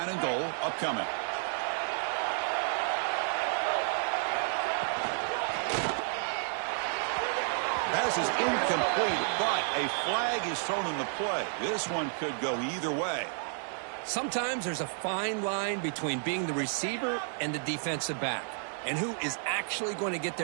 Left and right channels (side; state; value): left; silent; 57 dB below the other